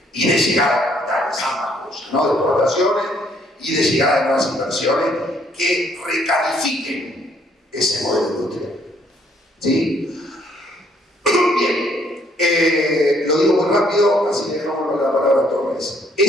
y de llegada de capitales, ambas cosas, ¿no? De exportaciones y de llegada de nuevas inversiones que recalifiquen ese modelo industrial. ¿Sí? Bien, lo digo muy rápido, así que dejamos la palabra a Torres.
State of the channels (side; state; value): both; normal; correlation 0.66